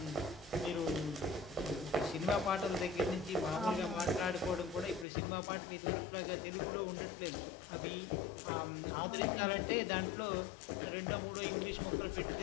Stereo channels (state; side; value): drops out; right; at 5.1 s